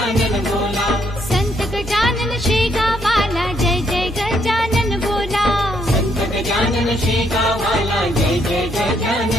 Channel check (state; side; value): normal; both; correlation 0.72